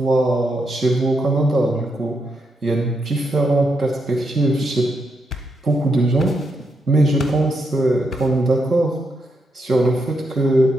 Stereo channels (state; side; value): normal; both; correlation 0.81